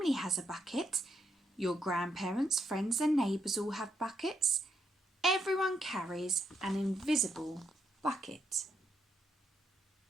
has a bucket. Your grandparents, friends and neighbours all have buckets. Everyone carries an invisible bucket.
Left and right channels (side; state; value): both; normal; correlation 0.78